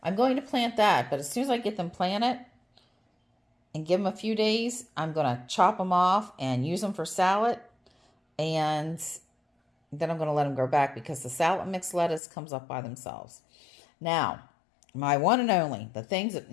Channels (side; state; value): right; drops out; at 12.2 s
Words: I'm going to plant that. But as soon as I get them planted and give them a few days, I'm going to chop them off and use them for salad. And then I'm going to let them grow back because the salad mix lettuce comes up by themselves. Now, my one and only, the things